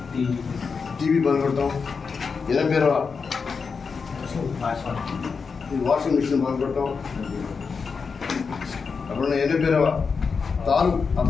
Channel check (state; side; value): quieter; right; 5.3 dB